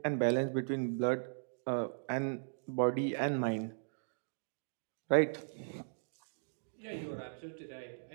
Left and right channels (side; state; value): left; silent; digital silence